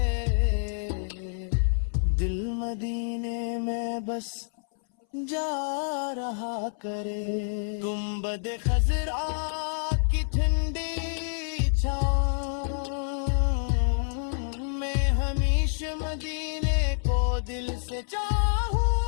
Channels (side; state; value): right; silent; 59 dB below the other